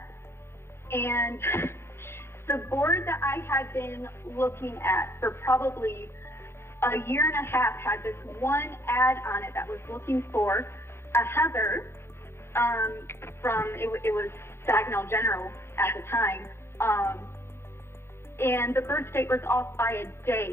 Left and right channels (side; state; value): right; late; 0.12 ms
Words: and the board that I had been looking at for probably a year and a half had this one ad on it that was looking for a Heather from, it was Saginaw General at the time, and the birth date was off by a